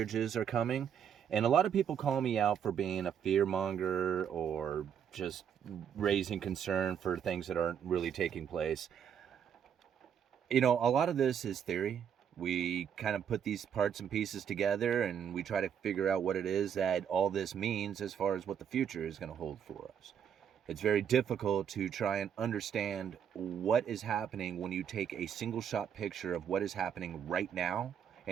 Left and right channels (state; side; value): quieter; left; 8.3 dB